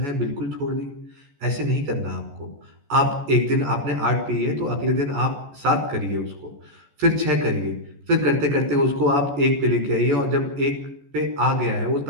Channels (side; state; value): left; late; 14 ms